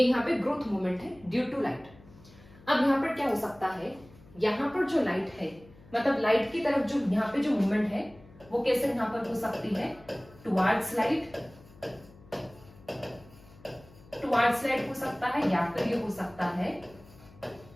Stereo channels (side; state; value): left; noise; hum, 24 dB below the sound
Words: यहाँ पे ग्रोथ मूवमेंट है ड्यू टू लाइट। अब यहाँ पर क्या हो सकता है, यहाँ पर जो लाइट है मतलब लाइट की तरफ जो यहाँ पे जो मूवमेंट है वो कैसे यहाँ पर हो सकती है, टुवर्ड्स लाइट, टुवर्ड्स लाइट हो सकता है, या फिर ये हो सकता है